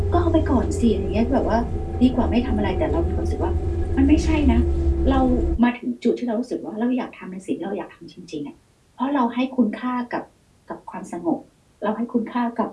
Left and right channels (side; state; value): both; identical; correlation 1.00